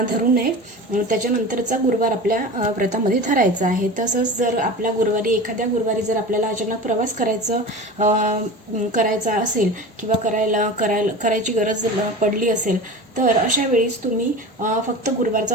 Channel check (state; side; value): normal; both; correlation 0.32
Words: धरू नये. त्याच्यानंतरचा गुरुवार आपल्या व्रतामध्ये धरायचा आहे. तसंच जर आपल्या एखाद्या गुरुवारी जर आपल्याला अचानक प्रवास करायचा असेल किंवा करायची गरज पडली असेल, तर अशा वेळेस तुम्ही फक्त गुरुवारचा